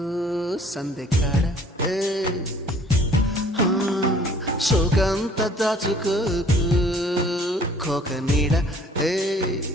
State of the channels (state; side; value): normal; both; correlation 0.54